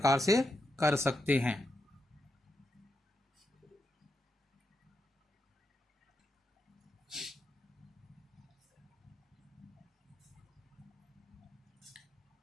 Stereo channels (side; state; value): both; normal; correlation 0.84